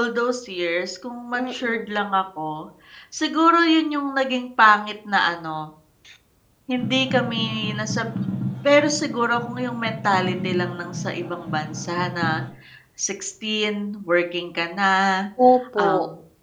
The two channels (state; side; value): identical; both; correlation 1.00